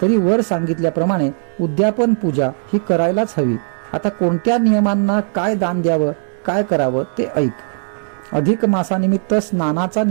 तरी वर सांगितल्याप्रमाणे उद्यापन पूजा ही करायलाच हवी. आता कोणत्या नियमांना काय दान द्यावं, काय करावं ते ऐक. अधिक मासानिमित्त स्नानाचा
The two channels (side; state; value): left; silent; digital silence